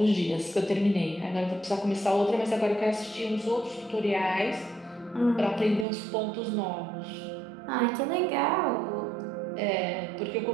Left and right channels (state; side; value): drops out; left; at 5.9 s